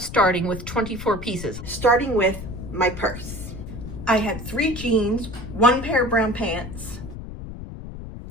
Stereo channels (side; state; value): left; noise; rumble, 10 dB below the sound